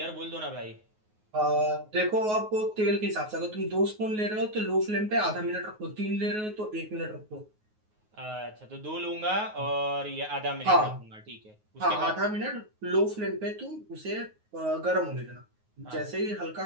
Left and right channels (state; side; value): late; left; 9.4 ms